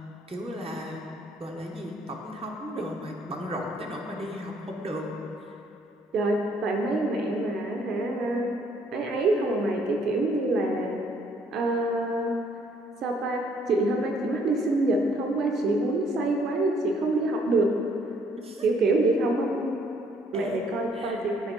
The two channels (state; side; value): normal; both; correlation 0.65